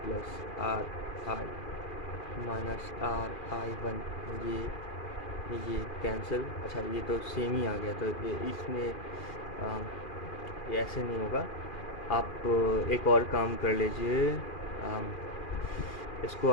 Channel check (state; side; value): late; right; 2.4 ms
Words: plus R I minus R I one. ये cancel, अच्छा ये तो same ही आ गया, तो इसमें ये ऐसे नहीं होगा। आप एक और काम कर लीजिए, इसको